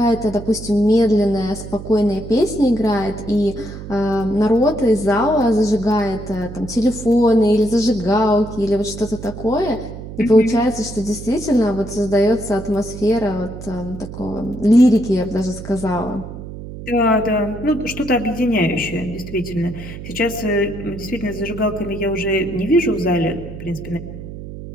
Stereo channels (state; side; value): noise; right; hum, 11 dB below the sound